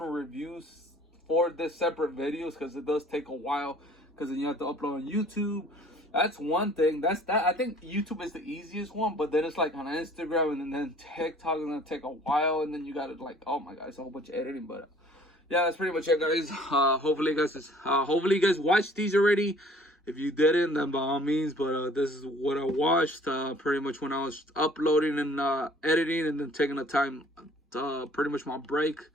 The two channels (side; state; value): both; normal; correlation 0.54